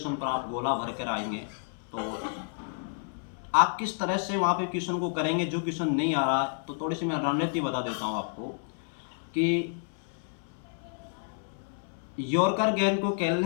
पर आप गोला भर कर आएंगे। तो आप किस तरह से वहाँ पे क्वेश्चन को करेंगे, जो क्वेश्चन नहीं आ रहा है, तो थोड़ी सी मैं रणनीति बता देता हूँ आपको। कि यॉर्कर गेंद को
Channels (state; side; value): silent; right; 57 dB below the other